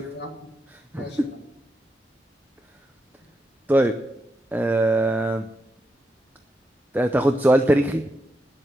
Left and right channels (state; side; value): normal; both; correlation 0.84